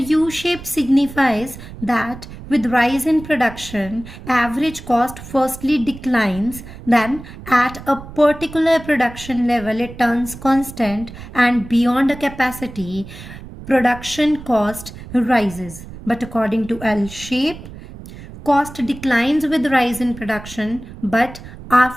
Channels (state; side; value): noise; right; rumble, 15 dB below the sound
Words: signifies that with rise in production, average cost firstly declines, then at a particular production level it turns constant, and beyond a capacity, production cost rises. But according to L-shape, cost declines with rise in production, but